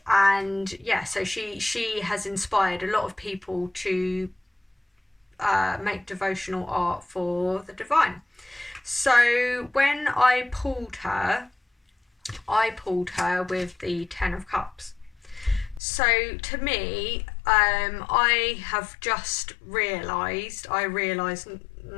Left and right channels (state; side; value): drops out; right; at 15.8 s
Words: And yeah, so she has inspired a lot of people to make devotional art for the divine. So when I pulled her with the Ten of Cups. So to me, I have just realised